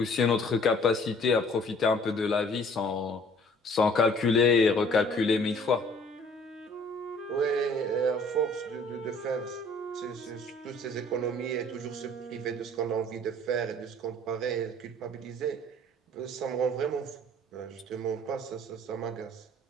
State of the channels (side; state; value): both; normal; correlation 0.54